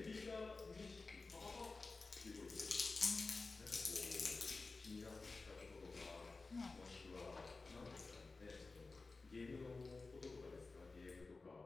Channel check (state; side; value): quieter; right; 3.8 dB